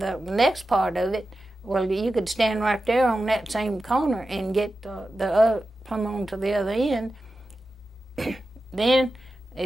next part of it, well, you could stand right there on that same corner and get come on to the other end. Then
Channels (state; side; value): normal; both; correlation 0.93